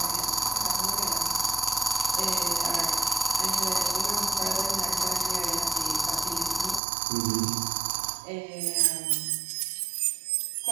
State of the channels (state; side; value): drops out; left; at 6.8 s